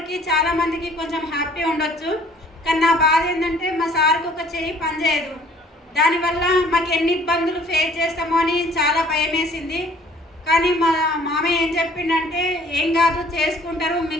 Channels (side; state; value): both; normal; correlation 0.56